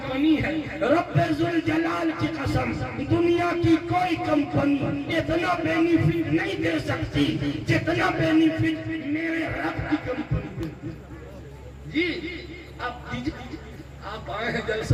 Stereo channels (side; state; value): both; identical; correlation 1.00